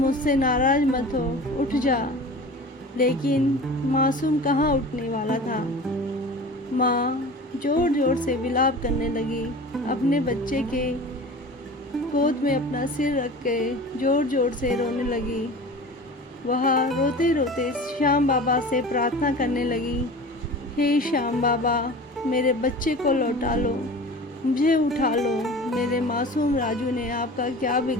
नाराज मत हो, उठ जा। लेकिन मासूम कहाँ उठने वाला था। माँ जोर जोर से विलाप करने लगी। अपने बच्चे के गोद में अपना सिर रख के जोर जोर से रोने लगी। वह रोते रोते श्याम बाबा से प्रार्थना करने लगी, हे श्याम बाबा, मेरे बच्चे को लौटा लो, मुझे उठा लो। मेरे मासूम राजू ने आपका क्या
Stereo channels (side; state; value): both; normal; correlation 0.37